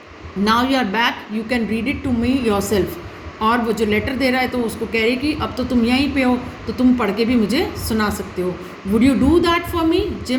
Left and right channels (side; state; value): both; identical; correlation 1.00